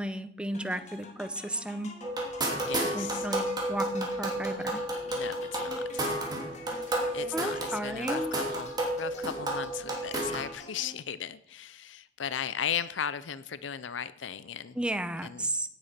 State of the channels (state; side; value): normal; both; correlation 0.33